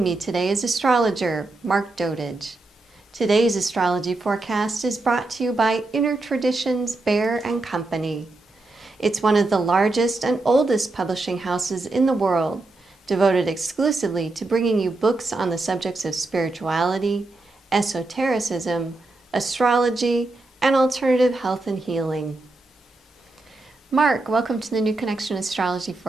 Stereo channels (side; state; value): left; quieter; 3.1 dB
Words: me today is astrologer Mark Dotage. Today's astrology forecast is brought to you by Inner Traditions Bear and Company. It's one of the largest and oldest publishing houses in the world, devoted exclusively to bringing you books on the subjects of spirituality, esotericism, astrology, and alternative health and healing. Mark, welcome to the new Connexion Astrology